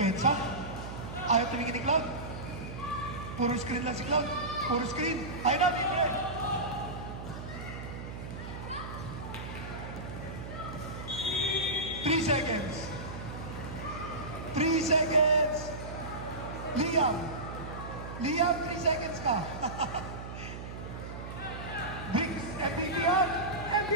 Ayaw tumingin ni Cloud. Puro screen lang si Cloud. Puro screen. Ayaw na, libre. Three seconds. Liam, 3 seconds ka.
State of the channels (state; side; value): noise; right; hum, 9 dB below the sound